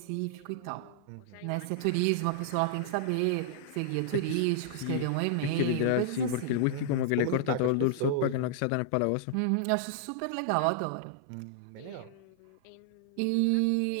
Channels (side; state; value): both; different; correlation -0.01